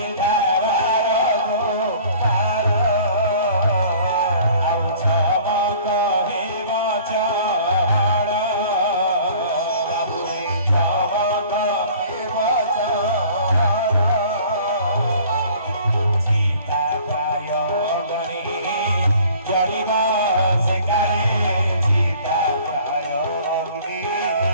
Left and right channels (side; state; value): both; inverted; correlation -0.50